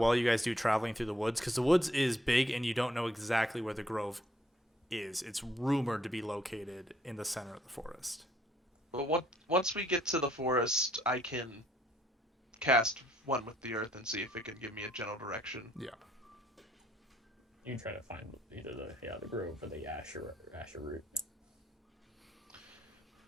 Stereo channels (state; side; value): normal; both; correlation 0.68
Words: you guys do traveling through the woods, because the woods is big and you don't know exactly where the grove is. It's rumored to be located in the center of the forest. But once we get to the forest, I can cast one with the earth and see if it can give me a general direction. Yeah. You can try to find either the grove or the Asher root.